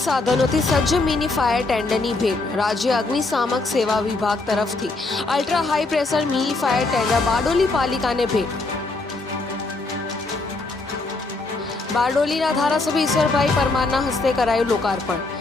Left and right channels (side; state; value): right; quieter; 3.4 dB